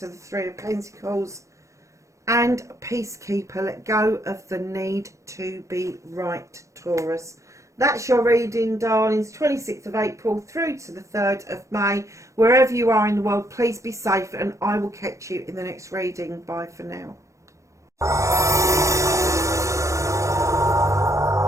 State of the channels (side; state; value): left; late; 0.15 ms